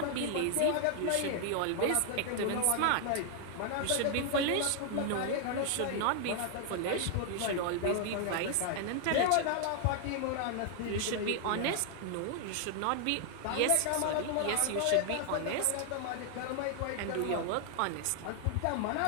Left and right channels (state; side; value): different; both; correlation 0.00